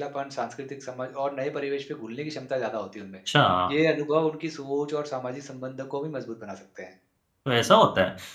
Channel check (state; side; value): identical; both; correlation 1.00